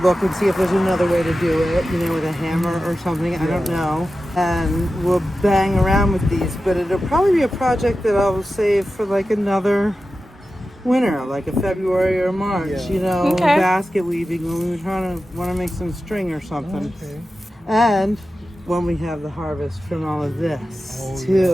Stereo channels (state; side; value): normal; both; correlation 0.93